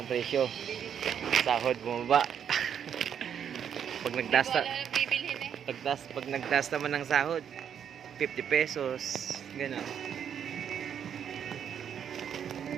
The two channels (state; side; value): quieter; left; 8.5 dB